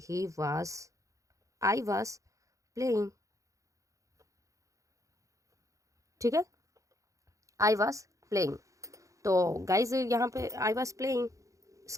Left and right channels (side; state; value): left; late; 0.15 ms